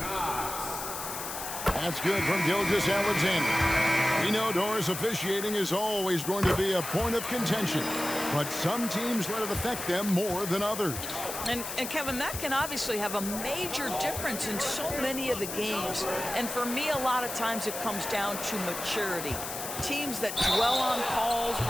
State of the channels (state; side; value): noise; left; hiss, 7 dB below the sound